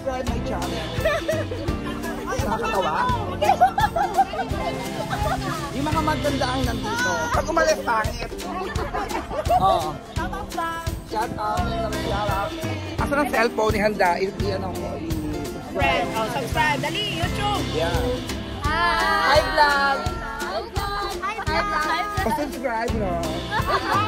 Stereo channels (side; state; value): both; identical; correlation 1.00